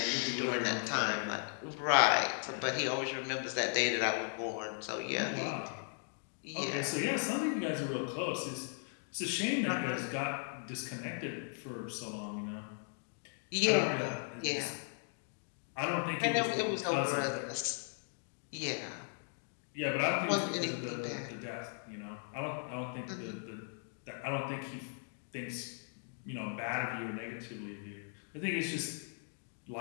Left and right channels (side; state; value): right; silent; 53 dB below the other